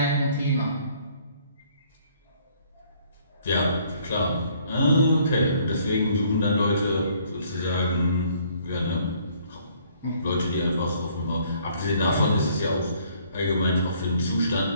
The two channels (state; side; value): inverted; both; correlation -0.62